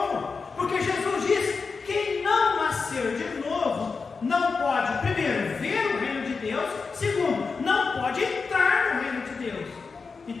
Porque Jesus diz: quem não nascer de novo não pode, primeiro, ver o reino de Deus, segundo, não pode entrar no reino de Deus.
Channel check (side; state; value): right; quieter; 4.8 dB